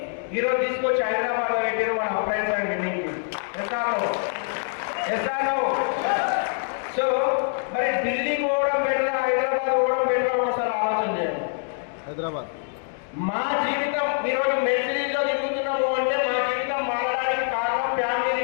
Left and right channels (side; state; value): right; silent; 59 dB below the other